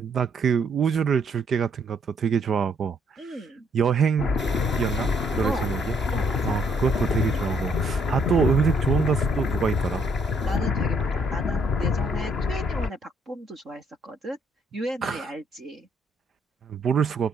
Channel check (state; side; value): normal; both; correlation 0.69